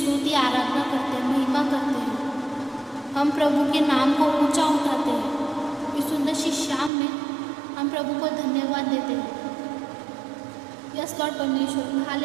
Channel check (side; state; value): left; drops out; at 6.9 s